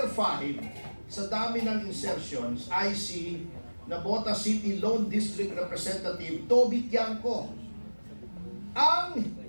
5 sa dami ng insertions ay si Nabota City Lone District Representative Toby Tiangco. Ang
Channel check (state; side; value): inverted; both; correlation -1.00